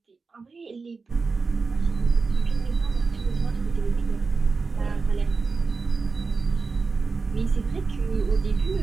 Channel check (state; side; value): quieter; left; 4.4 dB